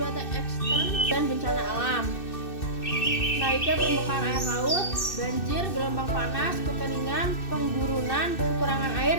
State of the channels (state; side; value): late; right; 2.6 ms